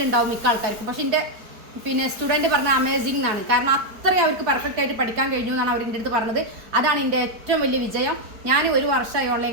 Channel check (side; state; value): left; late; 4.6 ms